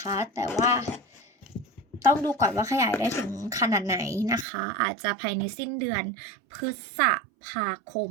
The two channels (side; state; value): left; drops out; at 4.5 s